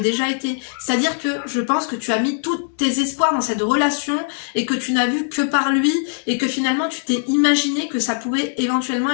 déjà été. C'est-à-dire que je pense que tu as mis tous tes espoirs dans cette relation et que tu n'as vu que par lui et que finalement tu t'es imaginé que ça pouvait éventuellement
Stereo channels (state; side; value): silent; right; digital silence